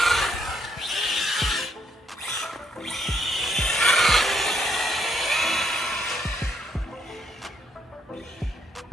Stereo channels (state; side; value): normal; both; correlation 0.72